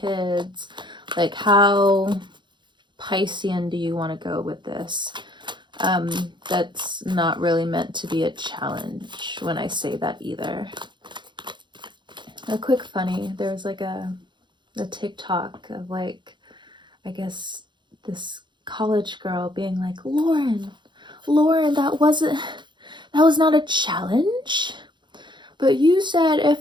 like how Piscean do you want to go with this? That's not really meant to be a challenge when I say that either. A quick funny, there was like a TikTok of like, I guess this college girl being like, Lauren, that was not a challenge. But you said if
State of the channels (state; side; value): late; left; 0.23 ms